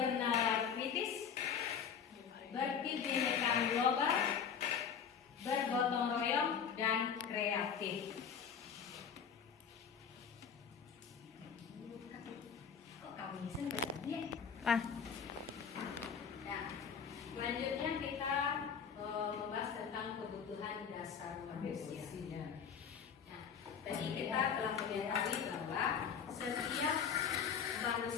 kritis, berkebinekaan global, bergotong royong, dan kreatif. Kok kamu sebenarnya? Selanjutnya kita membahas tentang kebutuhan dasar manusia. Nah, tadi kita telah mengetahui bahwa setiap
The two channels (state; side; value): quieter; right; 7.2 dB